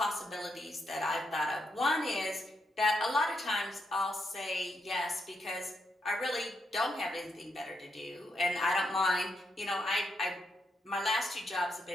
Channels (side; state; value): both; normal; correlation 0.80